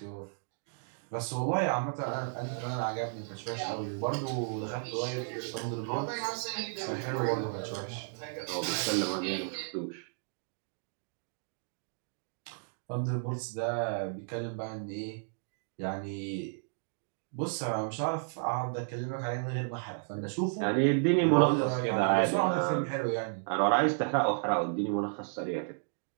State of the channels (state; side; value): silent; left; digital silence